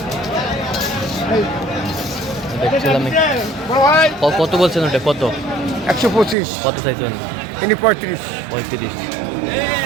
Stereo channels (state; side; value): drops out; left; at 6.4 s